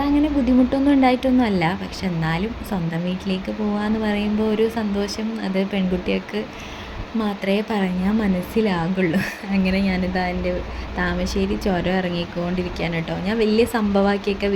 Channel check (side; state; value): both; identical; correlation 1.00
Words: അങ്ങനെ ബുദ്ധിമുട്ടൊന്നും ഉണ്ടായിട്ടൊന്നും അല്ല, പക്ഷെ എന്നാലും സ്വന്തം വീട്ടിലേക്ക് പോകാമെന്ന് പറയുമ്പോൾ ഒരു സന്തോഷം അത് പെൺകുട്ടികൾക്ക് മാത്രമേ പറഞ്ഞാൽ മനസ്സിലാകുള്ളൂ. അങ്ങനെ ഞാനിതാ എൻ്റെ താമശ്ശേരി ചുരം ഇറങ്ങിക്കൊണ്ടിരിക്കുകയാണ് കേട്ടോ. ഞാൻ വലിയ സംഭവമാക്കിയൊക്കെ